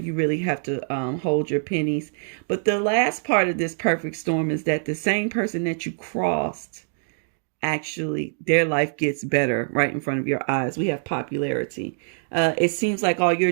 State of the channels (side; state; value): left; silent; digital silence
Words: You really have to hold your pennies. But the last part of this perfect storm is that the same person that you crossed, actually their life gets better right in front of your eyes. We have popularity. It seems like all your